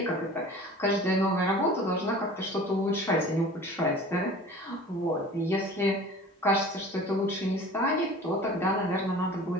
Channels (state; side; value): normal; both; correlation 0.42